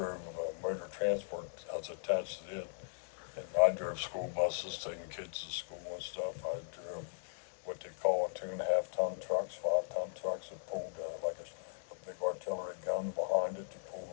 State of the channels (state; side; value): silent; right; 52 dB below the other